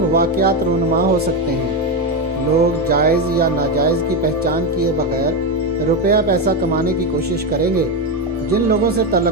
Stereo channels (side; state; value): both; normal; correlation 0.11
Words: वाक़यात रूनुमा हो सकते हैं। लोग जायज़ या नाजायज़ की पहचान किए बगैर रुपया पैसा कमाने की कोशिश करेंगे। जिन लोगों से